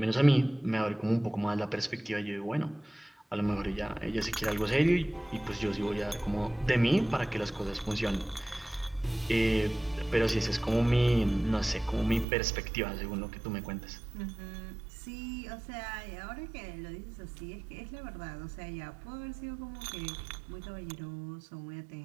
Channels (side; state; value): left; drops out; at 12.2 s